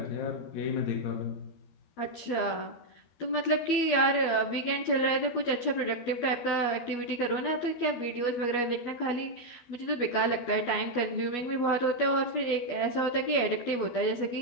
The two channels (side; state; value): right; late; 12 ms